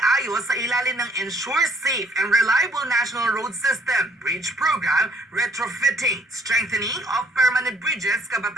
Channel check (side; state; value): both; normal; correlation 0.63